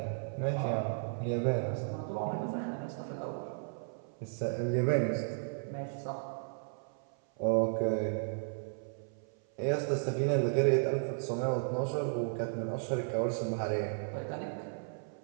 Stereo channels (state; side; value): silent; left; 55 dB below the other